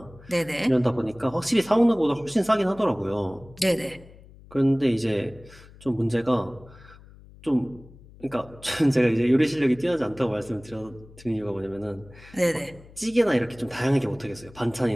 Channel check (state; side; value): noise; left; hum, 22 dB below the sound